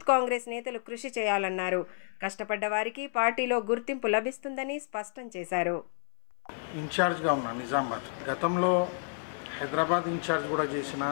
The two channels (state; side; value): silent; right; 58 dB below the other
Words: కాంగ్రెస్ నేతలు కృషి చేయాలన్నారు. కష్టపడ్డ వారికి పార్టీలో గుర్తింపు లభిస్తుందని స్పష్టం చేశారు. ఇన్ఛార్జ్గా ఉన్నా నిజామాబాద్, గతంలో హైదరాబాద్ ఇన్ఛార్జ్ కూడా చేసిన,